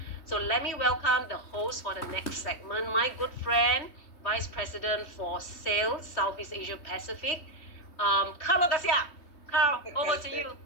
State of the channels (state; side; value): late; right; 3.3 ms